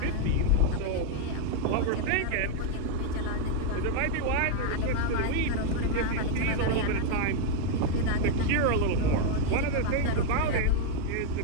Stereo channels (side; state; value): both; different; correlation 0.00